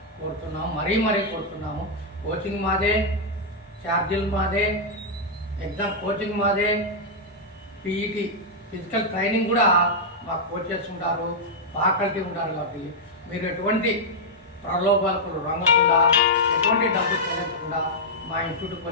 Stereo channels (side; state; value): both; normal; correlation -0.06